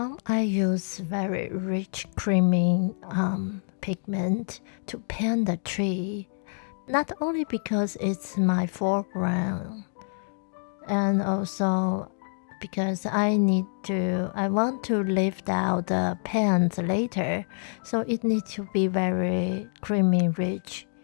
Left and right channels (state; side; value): silent; right; digital silence